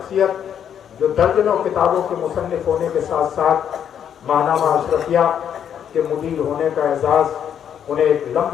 جو درجنوں کتابوں کے مصنف ہونے کے ساتھ ساتھ ماہنامہ اشرفیہ کے مدیر ہونے کا اعزاز انہیں ایک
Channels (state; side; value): quieter; right; 8.9 dB